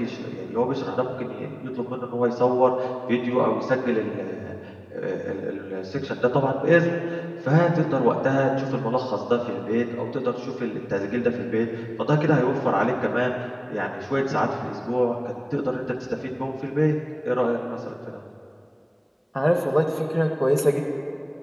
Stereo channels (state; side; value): identical; both; correlation 1.00